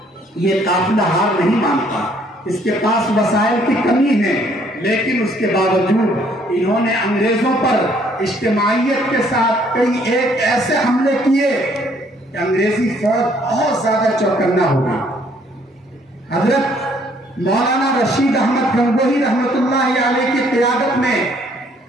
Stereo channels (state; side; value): normal; both; correlation 0.64